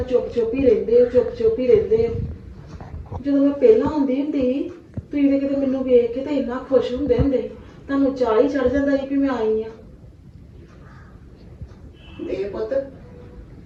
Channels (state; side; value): identical; both; correlation 1.00